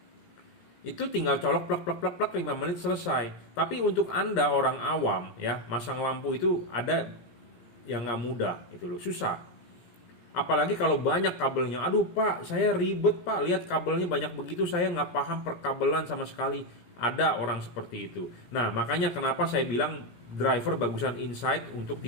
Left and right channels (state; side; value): late; right; 17 ms